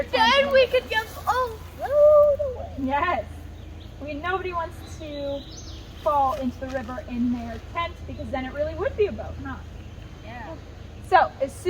and tent. then we could just float away. Yes. I mean, nobody wants to fall into the river in their tent, because then it really would be a boat, huh? Yeah. So, as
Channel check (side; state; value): both; identical; correlation 1.00